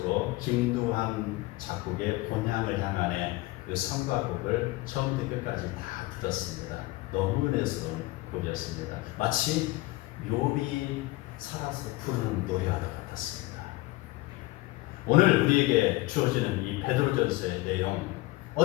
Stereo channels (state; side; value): quieter; right; 20.3 dB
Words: 김두한 작곡의 본향을 향한의 그 성가곡을 처음부터 끝까지 다 들었습니다. 너무 은혜스러운 곡이었습니다. 마치 욥이 살아서 부르는 노래와 같았습니다. 오늘 우리에게 주어지는 이 베드로전서의 내용,